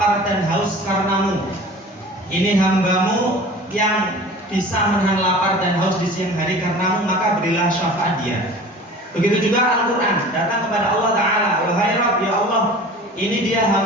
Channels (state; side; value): normal; both; correlation 0.41